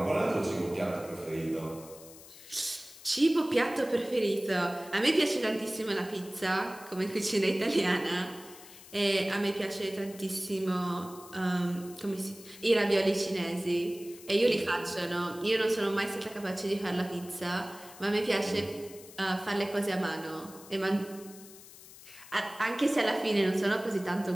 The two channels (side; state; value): left; noise; hiss, 19 dB below the sound